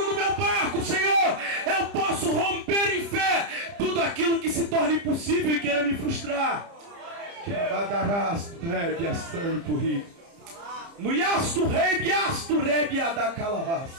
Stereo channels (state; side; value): late; left; 30 ms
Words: no meu barco, Senhor, eu posso romper em fé tudo aquilo que se torna impossível e queira me frustrar.